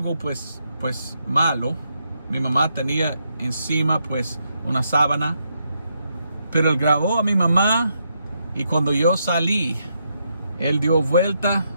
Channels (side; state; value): both; inverted; correlation -0.80